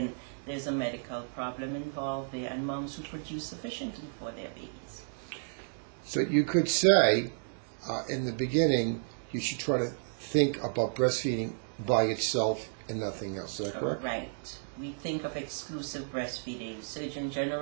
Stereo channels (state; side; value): silent; left; digital silence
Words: there's a medical problem involved there, and moms who produce sufficiently for their babies. So you could say, in the beginning, you should try to think about breastfeeding by itself and nothing else. Is that correct? Right. We think of exclusive breastfeeding. Surgeon